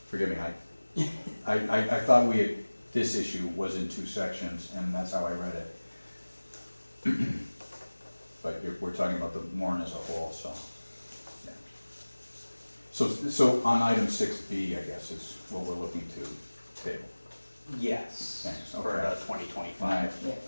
Forgive me, I thought we had, this issue was in 2 sections, and that's how I read it. But we're talking about the warrant as a whole, so, yeah. So on item 6B, I guess, is what we're looking to table. yes, Thanks, for okay. the 2025.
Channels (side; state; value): both; inverted; correlation -1.00